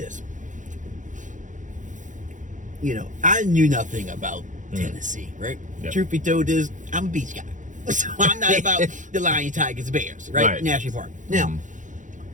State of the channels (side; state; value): left; late; 0.37 ms